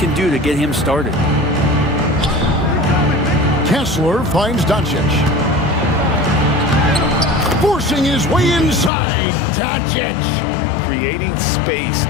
do to get him started. Kessler finds Doncic. Forcing his way inside. Doncic. Creating space,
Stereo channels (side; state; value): right; drops out; at 8.9 s